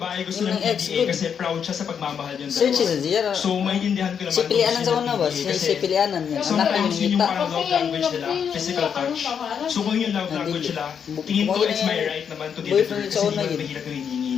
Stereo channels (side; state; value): right; quieter; 7.5 dB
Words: gusto Yung ng ex PDA ko. kasi proud siya sa pagmamahal yung Search dalawa. sa Zira. So, maintindihan ko naman. Si Pilianan sa una ba? PDA Si Pilianan yan. Anak ko yung Sometimes yun yung ngita. parang love language nila, physical touch. So kung yung love language nila, tingin ko it's my right naman to deliver Boyfriend kasi sa hindi una naman yun. mahirap yung hinihingi